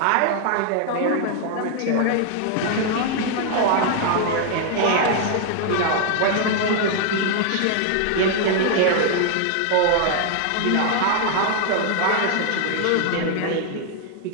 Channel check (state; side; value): different; both; correlation 0.00